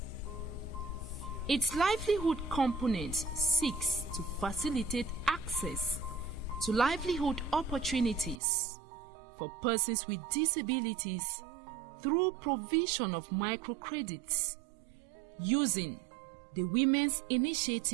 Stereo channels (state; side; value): drops out; left; at 8.4 s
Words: Its livelihood component seeks to facilitate access to livelihood opportunities for persons with disabilities through provision of microcredits using the Women's